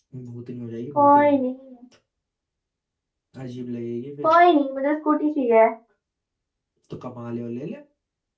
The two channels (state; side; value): identical; both; correlation 1.00